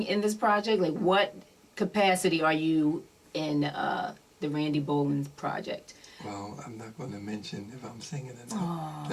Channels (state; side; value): identical; both; correlation 1.00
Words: in this project? Like, what capacity are you in the Randy Bowland project? Well, I'm not going to mention if I'm singing or not. Oh,